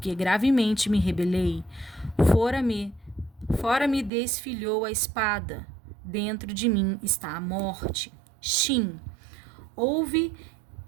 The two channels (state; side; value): drops out; left; at 4.1 s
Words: gravemente me rebelei. Fora me desfilhou a espada, dentro de mim está a morte. Shin, Ouve